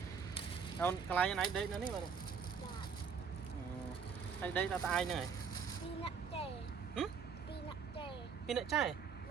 Đâu cái này này đây nó ní mà này. Đây đây là ai này? Pin lại chai.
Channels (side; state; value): left; quieter; 6.2 dB